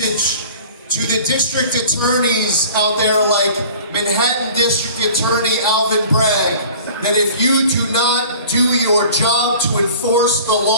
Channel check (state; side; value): inverted; both; correlation -0.45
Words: to the district attorneys out there like Manhattan District Attorney Alvin Bragg, that if you do not do your job to enforce the